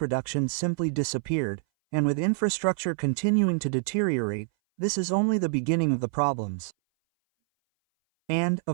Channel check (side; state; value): left; silent; 59 dB below the other